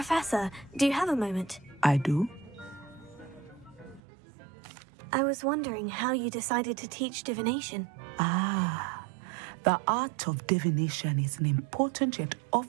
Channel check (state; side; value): drops out; left; at 4.0 s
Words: do you have a moment? I do. I was wondering how you decided to teach divination. Ah, the art of divination is an important yet